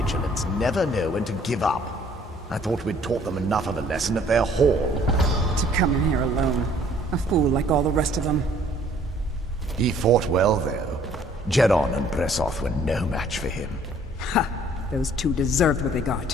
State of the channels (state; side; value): normal; both; correlation 0.59